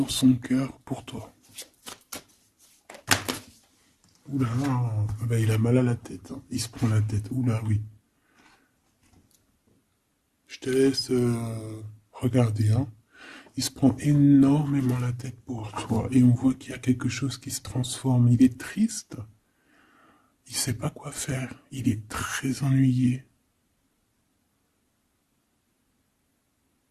son cœur pour toi. Oula, ah bah, il a mal à la tête, hein. Il se prend la tête. Oula, oui. Je te laisse regarder, hein. Il se prend énormément la tête pour toi. Et on voit qu'il y a quelque chose qui se transforme. Il est triste. Il sait pas quoi faire. Il est très ennuyé.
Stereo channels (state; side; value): identical; both; correlation 1.00